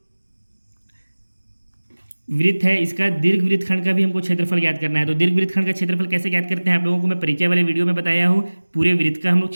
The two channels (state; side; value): inverted; both; correlation -1.00